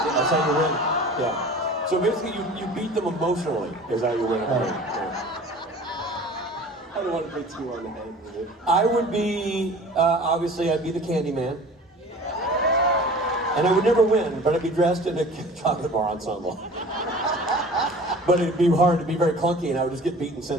how you win. Yeah. So basically, you beat them emotionally, is how you win. Yeah. I don't want to be too on the head with it. I would be, obviously, I'd be the Candyman. And I would never win, but I'd be dressed in a chocolate bar ensemble. But it'd be hard, it'd be very clunky, and I would just get beaten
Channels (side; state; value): both; normal; correlation 0.43